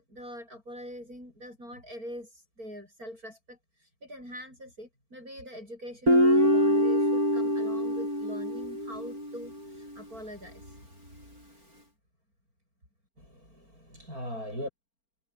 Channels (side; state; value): left; late; 4.4 ms